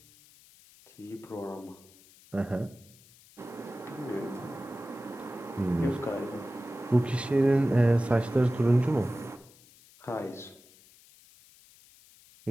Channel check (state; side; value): noise; left; hiss, 26 dB below the sound